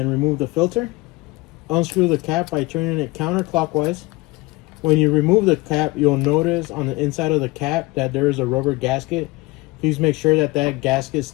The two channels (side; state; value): right; quieter; 22.8 dB